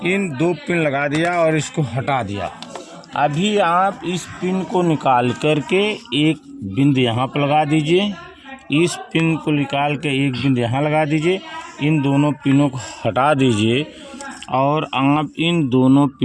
इन 2 पिन लगा दिया और इसको हटा दिया। अभी आप इस पिन को निकाल करके एक बिंदु यहाँ पर लगा दीजिए, इस पिन को निकाल के एक बिंदु यहाँ लगा दीजिए, इन दोनों पिनों को हटा दीजिए, और आप इन दोनों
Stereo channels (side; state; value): both; identical; correlation 1.00